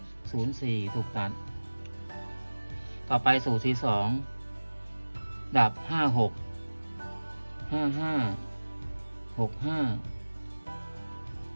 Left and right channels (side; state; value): both; inverted; correlation -1.00